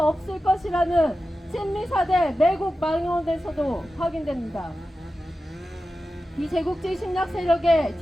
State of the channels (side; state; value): both; normal; correlation 0.93